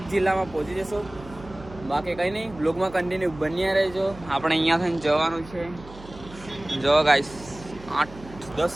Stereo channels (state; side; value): noise; right; hum, 18 dB below the sound